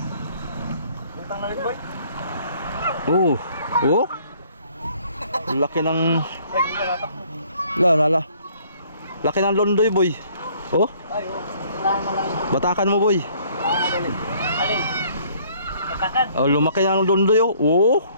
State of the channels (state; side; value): inverted; both; correlation -0.60